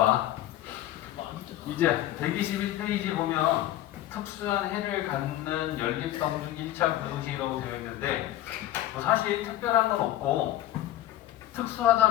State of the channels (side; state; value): right; quieter; 14.0 dB